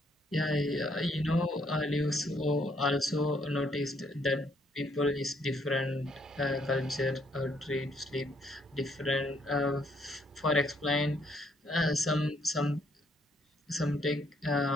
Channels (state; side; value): normal; both; correlation 0.70